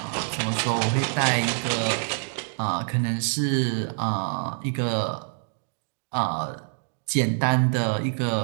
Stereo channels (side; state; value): left; silent; 59 dB below the other